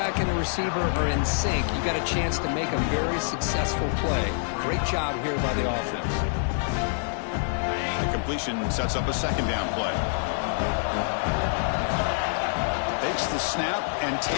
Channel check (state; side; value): silent; right; digital silence